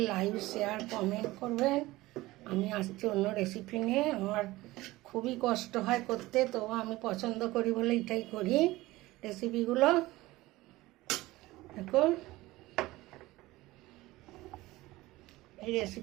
লাইক, শেয়ার, কমেন্ট করবেন। আমি আসছি অন্য রেসিপি নিয়ে। আমার খুবই কষ্ট হয় করতে, তো আমি পছন্দ করি বলে এটাই করি রেসিপিগুলো। দেখুন এই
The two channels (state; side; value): quieter; left; 18.7 dB